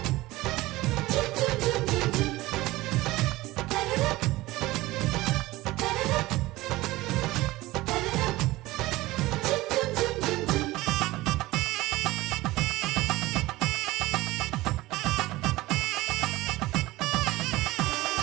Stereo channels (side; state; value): left; quieter; 18.8 dB